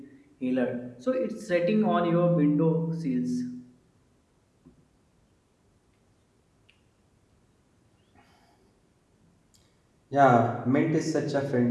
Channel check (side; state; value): both; identical; correlation 1.00